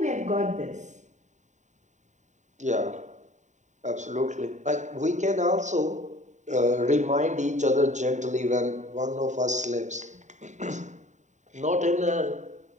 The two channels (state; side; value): late; left; 0.34 ms